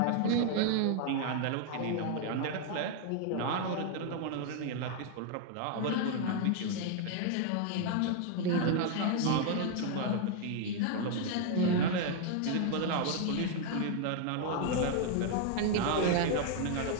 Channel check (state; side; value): different; both; correlation 0.00